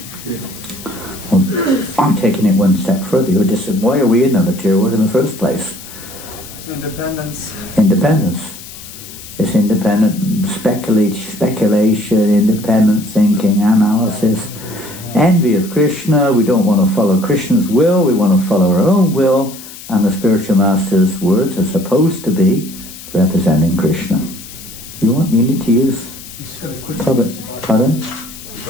Well, I'm taking it one step further. Why are we in the material world in the first place? Independence. Independence. It's independent speculation, independent thinking, analysis, envy of Krishna. We don't want to follow Krishna's will, we want to follow our own will, and the spiritual master's words are supposed to be representing Krishna. You need to use... Pardon?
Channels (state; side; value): noise; left; hiss, 15 dB below the sound